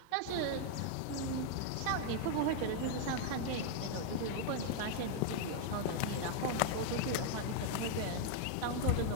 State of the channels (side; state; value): both; different; correlation 0.00